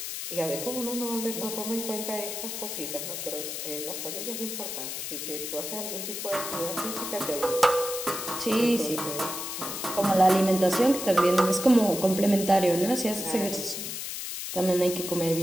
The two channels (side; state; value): left; noise; hiss, 6 dB below the sound